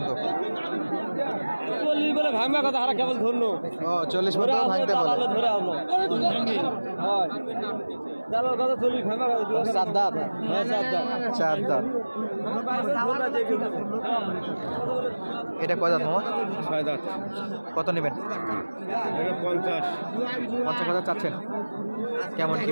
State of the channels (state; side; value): inverted; both; correlation -1.00